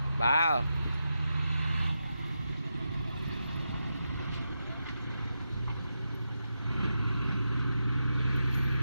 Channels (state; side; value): inverted; both; correlation -0.87